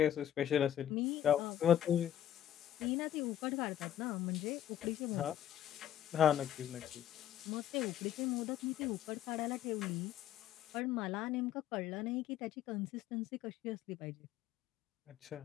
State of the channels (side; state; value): right; quieter; 11.0 dB